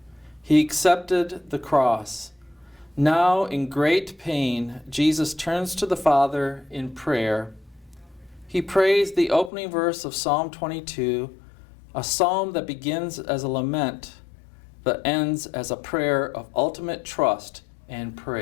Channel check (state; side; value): drops out; right; at 9.5 s